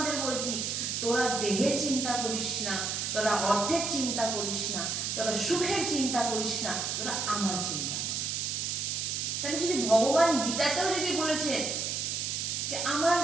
বলছি, তোরা দেহের চিন্তা করিস না, তোরা অর্থের চিন্তা করিস না, তোরা সুখের চিন্তা করিস না, তোরা আমার চিন্তা কর। তাহলে যদি ভগবান গীতাতেও যদি বলেছেন যে আমার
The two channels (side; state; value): right; noise; hiss, 1 dB below the sound